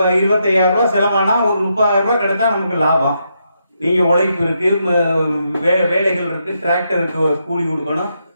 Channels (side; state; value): both; inverted; correlation -0.80